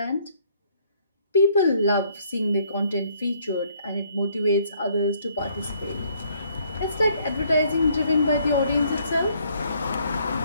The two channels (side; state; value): both; inverted; correlation -0.65